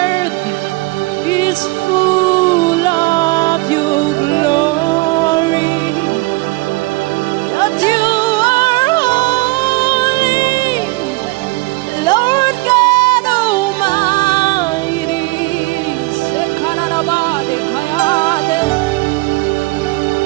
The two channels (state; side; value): quieter; left; 22.5 dB